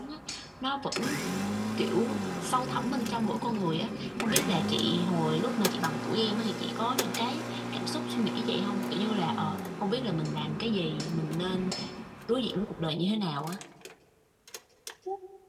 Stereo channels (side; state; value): both; identical; correlation 1.00